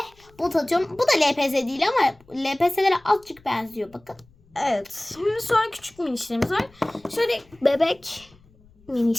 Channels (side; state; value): left; noise; rumble, 29 dB below the sound